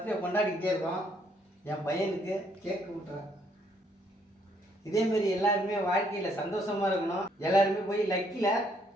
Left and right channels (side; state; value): both; normal; correlation 0.69